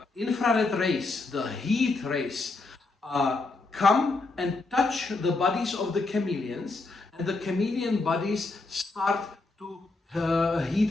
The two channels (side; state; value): right; quieter; 3.5 dB